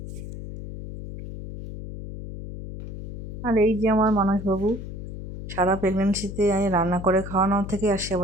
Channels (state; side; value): noise; left; hum, 9 dB below the sound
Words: আর এই যে আমার মানসবাবু, সারা প্রেগনেন্সিতে আমি রান্না করে খাওয়ানোর থেকে আর